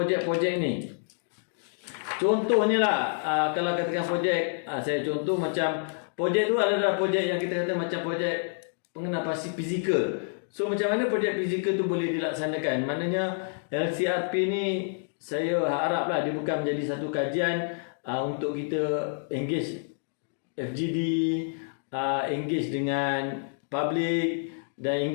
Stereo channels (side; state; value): right; silent; digital silence